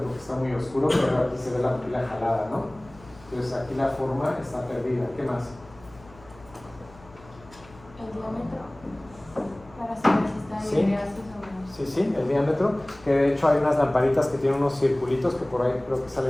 está muy oscuro, pero aquí se ve la pupila jalada, ¿no? Entonces aquí la forma está perdida. ¿Qué más? El diámetro, para saber si está Sí. en ideasis o no. Sí, sí, el diámetro, que de hecho hay unas lamparitas que tienen unos circulitos, que por ahí creo que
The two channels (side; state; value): left; noise; hum, 23 dB below the sound